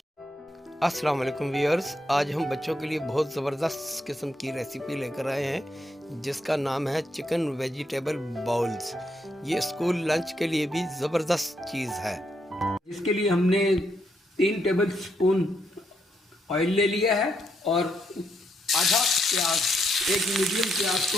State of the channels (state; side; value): normal; both; correlation 0.78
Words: अस्सलाम वालेकुम viewers, आज हम बच्चों के लिए बहुत ज़बरदस्त किस्म की रेसिपी लेकर आए हैं जिसका नाम है चिकन वेजिटेबल बाउल्स। ये स्कूल लंच के लिए भी ज़बरदस्त चीज़ है। इसके लिए हमने 3 टेबल स्पून ऑयल ले लिया है और आधा प्याज, एक मीडियम प्याज को